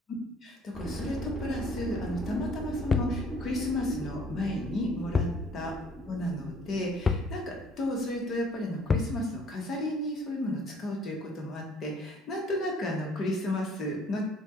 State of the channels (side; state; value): both; normal; correlation 0.58